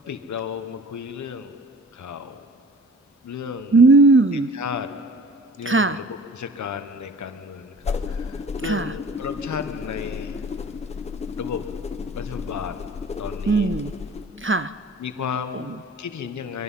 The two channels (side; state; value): both; normal; correlation 0.45